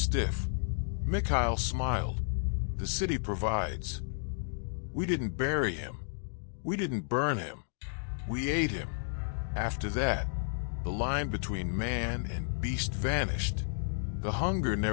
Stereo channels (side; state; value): right; silent; digital silence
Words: Mikhail smiled. "The city provides." We didn't bury him. We didn't burn him. We ate him. After that, the line between man and beast vanished. The hunger